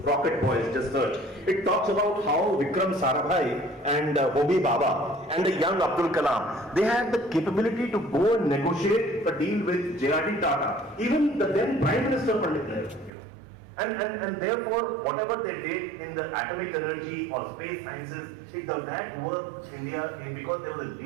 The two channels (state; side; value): drops out; left; at 13.1 s